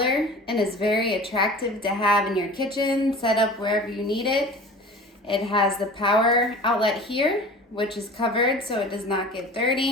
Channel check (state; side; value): normal; both; correlation 0.40